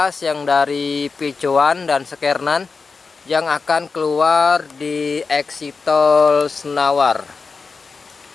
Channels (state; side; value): quieter; right; 4.6 dB